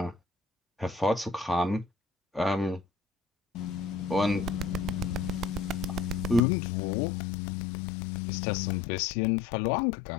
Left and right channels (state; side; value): drops out; right; at 6.4 s